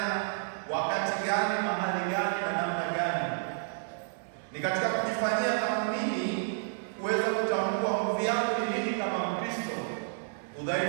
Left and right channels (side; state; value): left; silent; digital silence